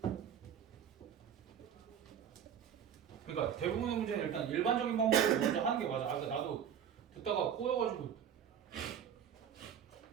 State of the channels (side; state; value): left; quieter; 8.7 dB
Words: 그러니까 대부분의 문제는 일단 일반적인 방법으로 먼저 하는 게 맞아. 아까 나도 듣다가 꼬여가지고.